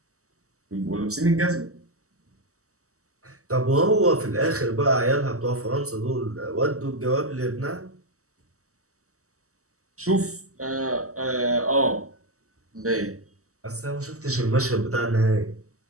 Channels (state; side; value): late; left; 0.65 ms